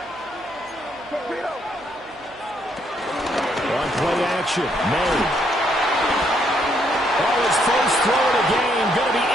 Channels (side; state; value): right; noise; hum, 27 dB below the sound